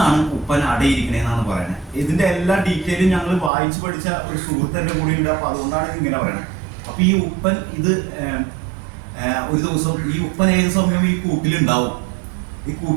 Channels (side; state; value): left; drops out; at 3.5 s